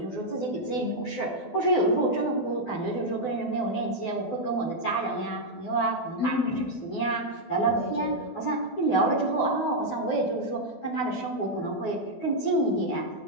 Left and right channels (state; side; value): late; right; 12 ms